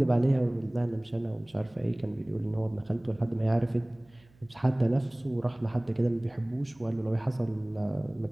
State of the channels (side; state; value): right; noise; hum, 30 dB below the sound